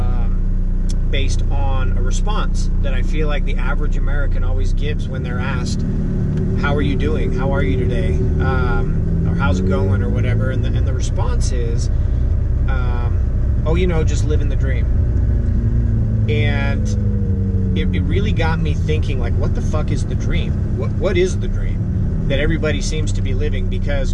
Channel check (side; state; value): both; identical; correlation 1.00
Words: based on a response that I feel like the average American always gives when they're asked, how are you doing? How are you today? Or how's it going? Or whatever. And the response is, oh, just living the dream. And it really got me thinking, like, what the fuck is the dream? What is the dream that everybody seems to be living? Because